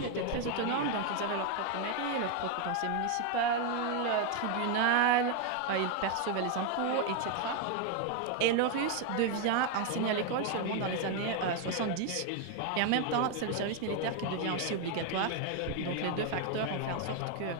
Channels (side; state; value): both; different; correlation 0.01